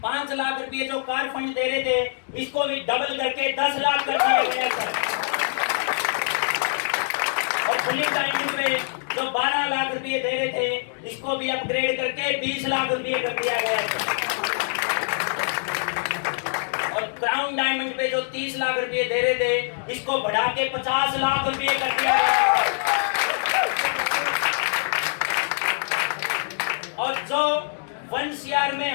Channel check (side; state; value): right; silent; digital silence